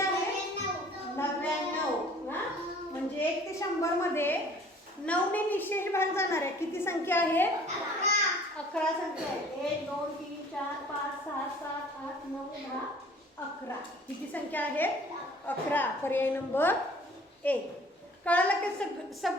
99. म्हणजे 1 ते 100 मध्ये 9 ने निशेष भाग जाणार आहे किती संख्या आहे? 11 संख्या आहे. 1 2 3 4 5 6 7 8 9 10 11. किती संख्या आहे? 11. पर्याय नंबर 1. कळालं की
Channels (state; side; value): normal; both; correlation 0.52